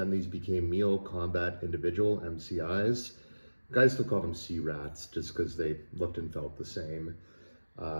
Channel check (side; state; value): both; inverted; correlation -1.00